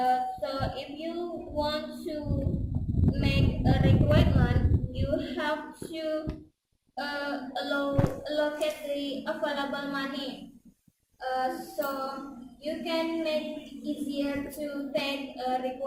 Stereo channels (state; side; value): identical; both; correlation 1.00